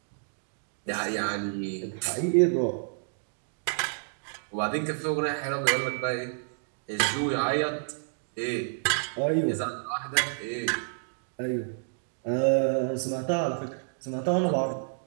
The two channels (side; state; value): left; silent; digital silence